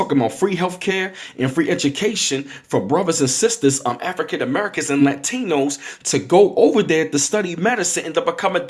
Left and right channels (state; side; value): identical; both; correlation 1.00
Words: about free healthcare and free education for brothers and sisters, African Americans and Latinos, to go over there to study medicine and to become a